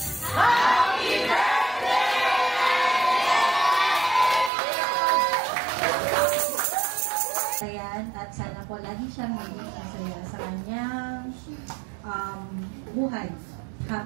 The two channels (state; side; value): drops out; left; at 4.5 s